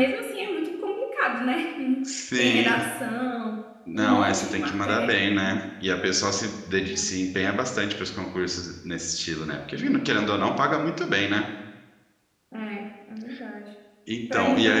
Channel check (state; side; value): identical; both; correlation 1.00